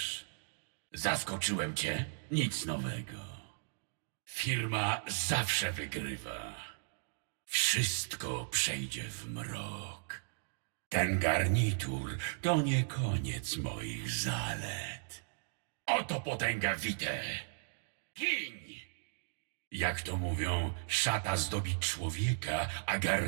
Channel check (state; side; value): silent; left; digital silence